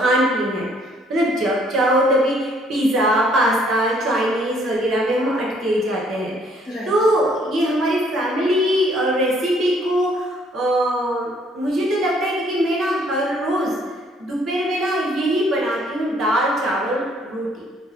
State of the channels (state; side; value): normal; both; correlation 0.64